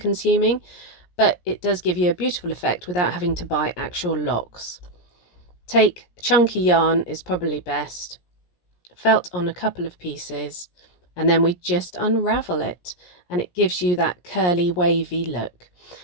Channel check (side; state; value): right; late; 17 ms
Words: but it does give you a beautiful effect without having to buy actual locks. Take chunky yarn is probably best, felt on a couple of pieces, and then we just unravel it, and it gives you that curly wavy look.